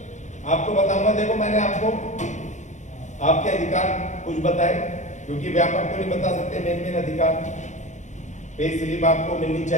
आपको बताऊंगा। देखो मैंने आपको आपके अधिकार कुछ बताए, क्योंकि व्यापक तो नहीं बता सकते। मेन अधिकार, पे स्लिप आपको मिलनी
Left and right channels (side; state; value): right; late; 0.35 ms